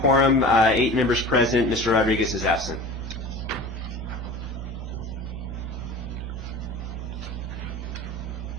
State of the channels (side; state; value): both; normal; correlation 0.38